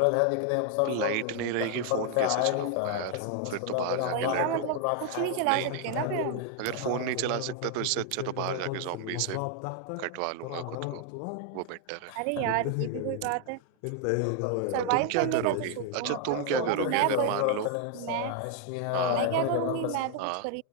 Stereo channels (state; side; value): different; both; correlation 0.00